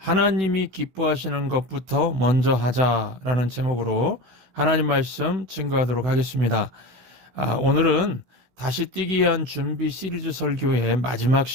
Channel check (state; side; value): late; left; 16 ms